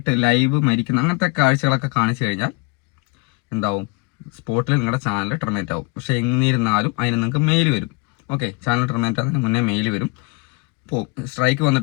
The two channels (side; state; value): right; quieter; 26.7 dB